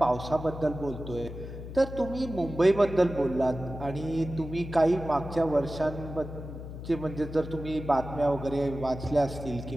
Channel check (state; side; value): noise; left; hum, 10 dB below the sound